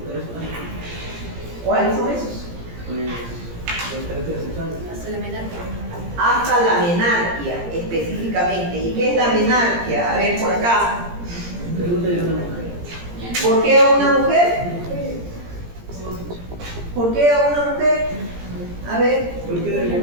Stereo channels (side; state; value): left; late; 17 ms